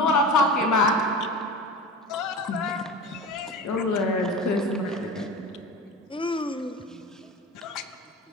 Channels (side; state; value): both; normal; correlation 0.30